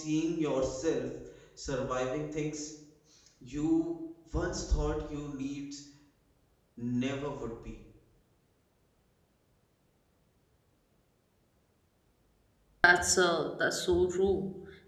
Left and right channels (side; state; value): both; identical; correlation 1.00